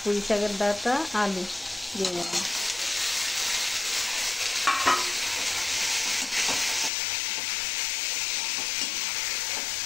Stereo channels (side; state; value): right; drops out; at 6.9 s